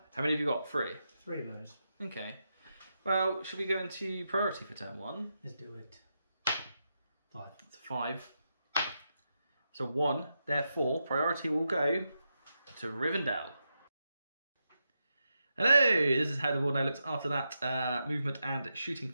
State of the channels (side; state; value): both; inverted; correlation -0.86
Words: How many have you got? 3? 3 of those. Okay. Well, should we go into priority for turn 1? Let's do it. 5. It's 5. So 1, therefore, priority will go to Rivendell. Hello, this is how the board now looks after that movement and shooting